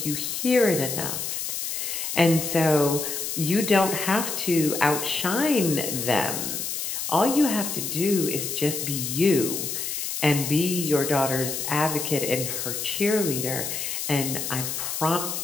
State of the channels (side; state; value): left; noise; hiss, 3 dB below the sound